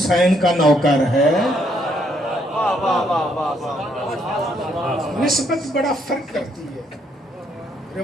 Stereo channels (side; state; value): both; normal; correlation 0.72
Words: کا نوکر ہے. نسبت بڑا فرق کرتی ہے.